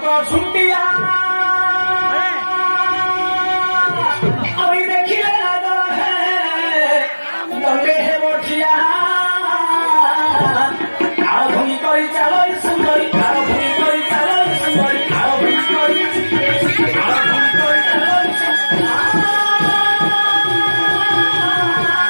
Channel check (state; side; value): inverted; both; correlation -1.00